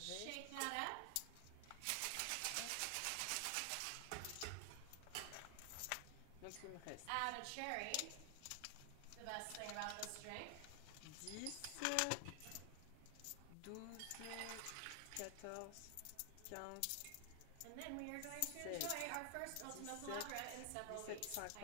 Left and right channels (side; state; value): both; different; correlation 0.00